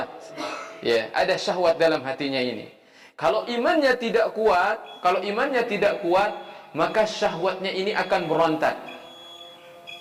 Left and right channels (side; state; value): both; identical; correlation 1.00